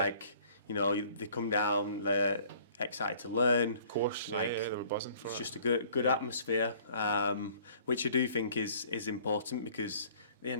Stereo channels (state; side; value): inverted; both; correlation -0.55